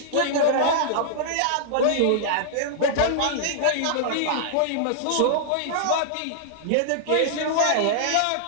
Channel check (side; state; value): both; different; correlation -0.01